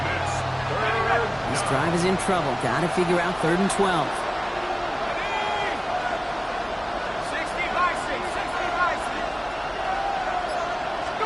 This drive is in trouble. Got to figure out 3rd and 12. 60 by 6.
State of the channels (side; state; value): both; identical; correlation 1.00